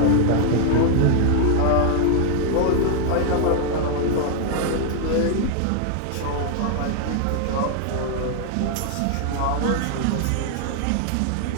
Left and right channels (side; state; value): both; different; correlation 0.00